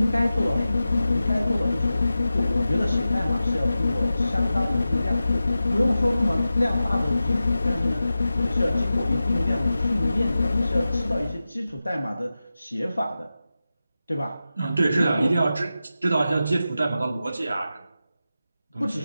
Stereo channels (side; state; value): both; inverted; correlation -0.93